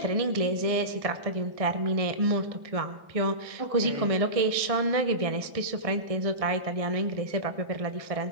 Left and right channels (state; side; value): late; left; 1.6 ms